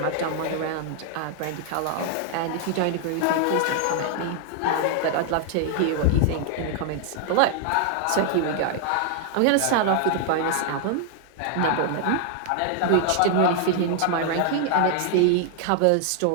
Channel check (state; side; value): different; both; correlation 0.00